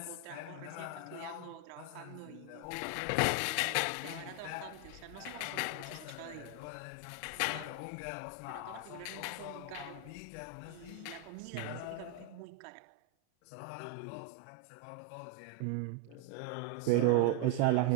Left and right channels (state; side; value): different; both; correlation 0.01